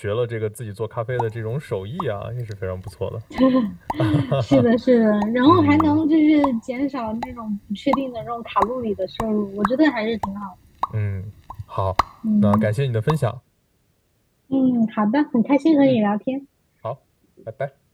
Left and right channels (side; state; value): both; identical; correlation 1.00